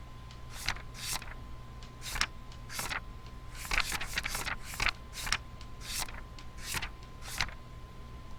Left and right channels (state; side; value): identical; both; correlation 1.00